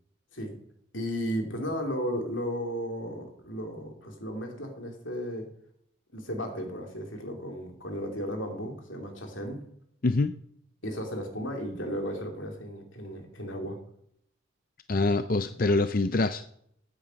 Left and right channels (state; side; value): normal; both; correlation 0.49